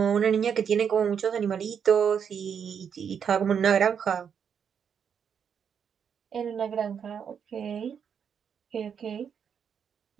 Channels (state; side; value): quieter; left; 7.5 dB